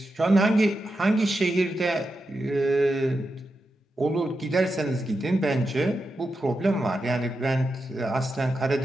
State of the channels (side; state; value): both; normal; correlation 0.88